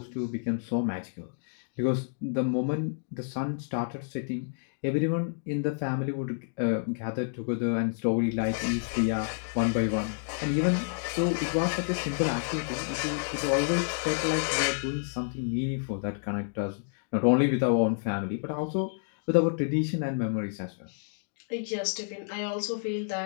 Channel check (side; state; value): right; silent; digital silence